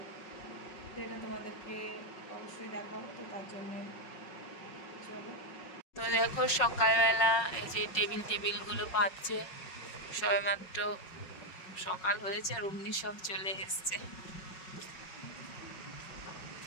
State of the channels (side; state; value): right; late; 5.4 ms